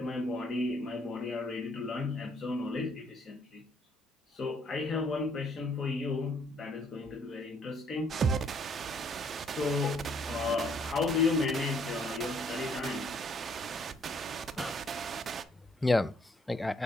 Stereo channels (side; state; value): both; normal; correlation 0.66